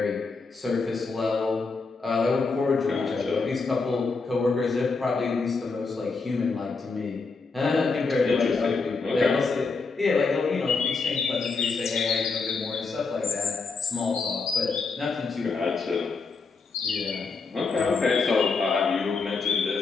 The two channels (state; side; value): quieter; right; 4.4 dB